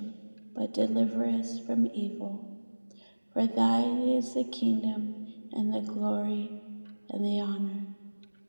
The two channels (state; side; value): inverted; both; correlation -1.00